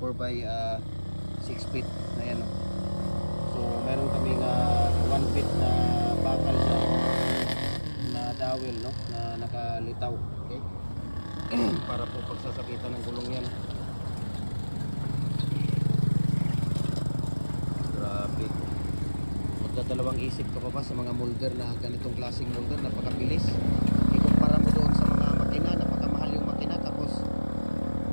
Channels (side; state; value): both; inverted; correlation -1.00